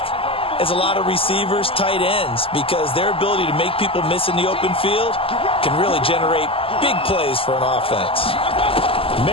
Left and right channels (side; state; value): right; late; 0.26 ms